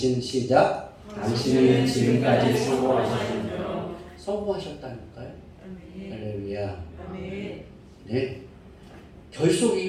시작. 당신은 지금까지 성공하셨군요. 성공하셨다니까요. 할렐루야. 네.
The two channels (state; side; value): identical; both; correlation 1.00